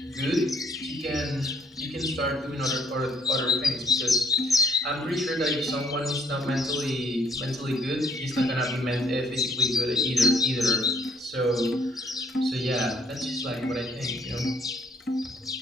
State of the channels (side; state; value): both; normal; correlation 0.65